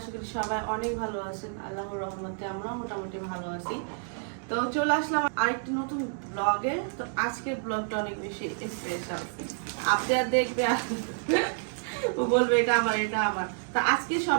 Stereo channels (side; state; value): left; silent; 58 dB below the other